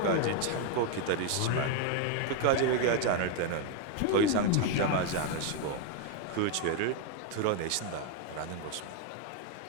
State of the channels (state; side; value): different; both; correlation 0.01